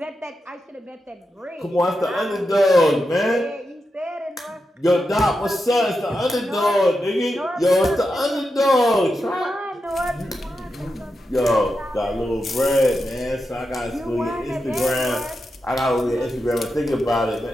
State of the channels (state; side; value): normal; both; correlation 0.88